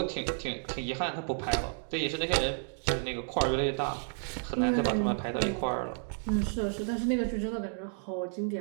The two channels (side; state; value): left; silent; 57 dB below the other